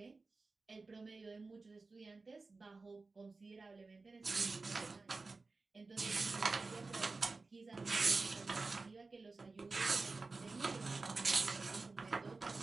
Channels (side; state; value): left; quieter; 3.8 dB